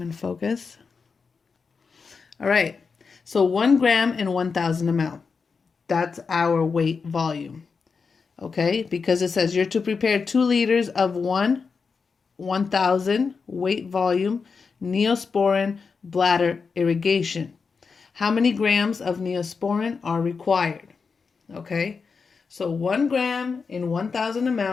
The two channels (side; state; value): right; quieter; 5.2 dB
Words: in focus. All right. So 1 gram in 1,000 ml. That's our weight volume. Okay. Because it says you're to prepare 2 liters of 1,000 weight volume Neosporin bladder irrigation. How many grams of Neosporin are required? Okay. So 1 gram in 1,000